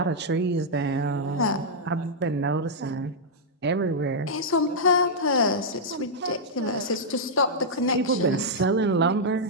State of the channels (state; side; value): normal; both; correlation -0.07